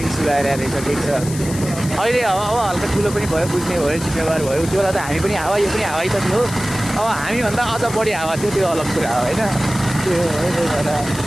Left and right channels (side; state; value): left; noise; hiss, 12 dB below the sound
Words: सुधाएर रहेछ, ठिक छ। अहिले अब हल्का ठुलो पनि भयो, बुझ्ने भयो, जिम्मेवार भयो। त्यो बेला त हामी पनि हावा, यो पनि हावै त थियो। अब हामीभन्दा अझ बढी हावा थियो, त्यो अलग कुरा हो होइन। त्यो